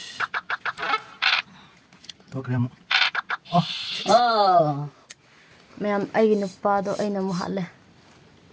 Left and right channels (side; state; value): both; identical; correlation 1.00